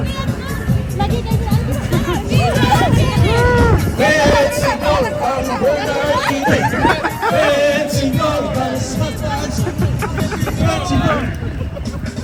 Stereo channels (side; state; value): both; identical; correlation 1.00